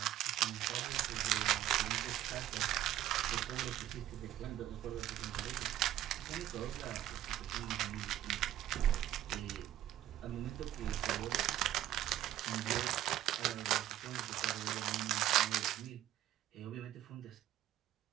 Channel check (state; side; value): quieter; left; 12.8 dB